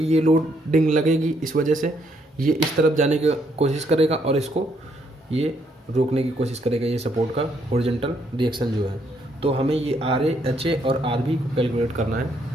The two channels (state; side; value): normal; both; correlation 0.72